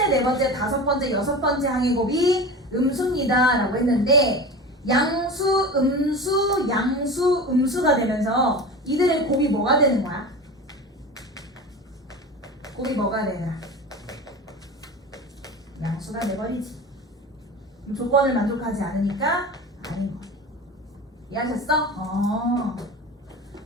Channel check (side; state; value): both; normal; correlation 0.31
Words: 네 번째, 다섯 번째, 여섯 번째 항의 곱이 음수입니다 라고 했는데, 양수, 음수, 양수, 음수가 되면서 이들의 곱이 뭐가 되는 거야? 곱이 뭐가 되나? 양수가 돼버리지. 조건을 만족하지 않으니까 아닌 거. 이해하셨어?